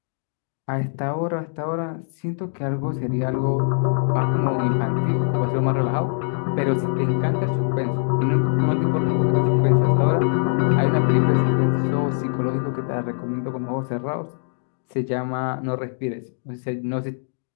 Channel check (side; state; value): right; silent; digital silence